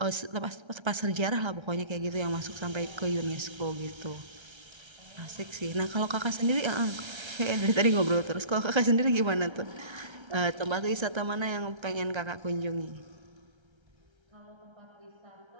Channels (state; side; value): late; left; 1.3 ms